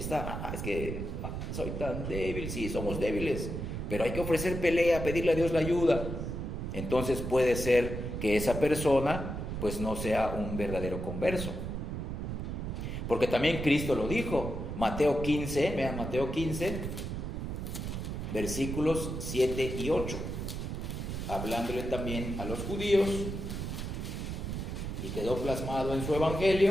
es que soy tan débil, sí, somos débiles, pero hay que ofrecer pelea, pedirle a Dios la ayuda. Entonces puede ser que esa persona, pues, no sea un verdadero converso. Porque también Cristo lo dijo, Mateo 15, vean Mateo 15, versículos 7 y 8, hablándole también a los judíos, y quedó plasmado en su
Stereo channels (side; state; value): right; noise; rumble, 4 dB below the sound